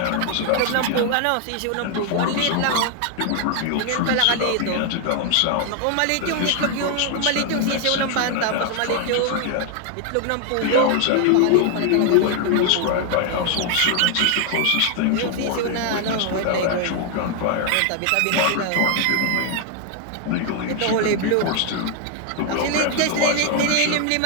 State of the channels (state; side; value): different; both; correlation 0.01